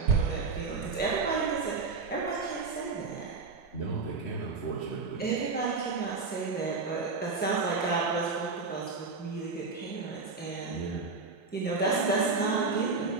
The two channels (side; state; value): left; quieter; 4.3 dB